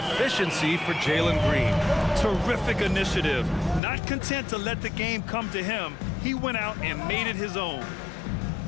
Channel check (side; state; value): right; drops out; at 3.8 s